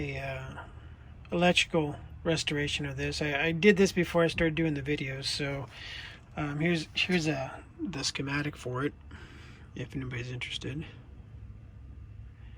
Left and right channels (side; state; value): both; identical; correlation 1.00